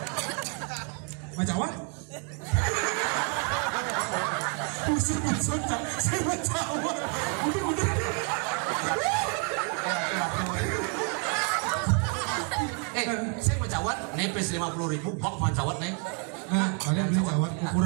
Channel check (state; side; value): quieter; left; 37.9 dB